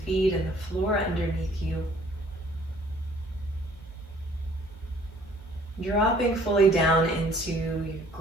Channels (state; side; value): normal; both; correlation 0.57